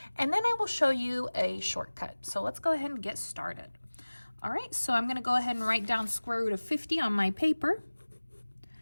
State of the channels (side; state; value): both; inverted; correlation -1.00